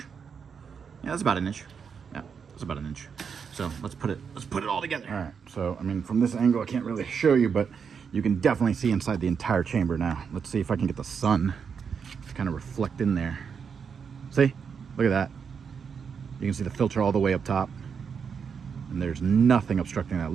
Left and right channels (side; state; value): left; quieter; 6.5 dB